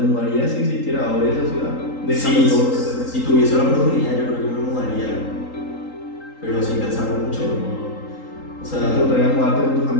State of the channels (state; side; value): late; right; 3.8 ms